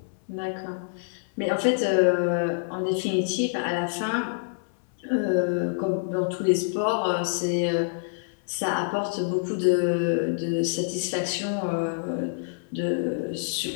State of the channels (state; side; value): silent; right; 61 dB below the other